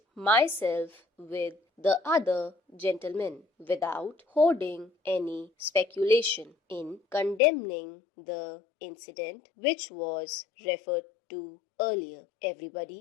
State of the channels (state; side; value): drops out; right; at 7.4 s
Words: myself with the other gentlemen without holding any speculation in condemning the incident which was referred to earlier.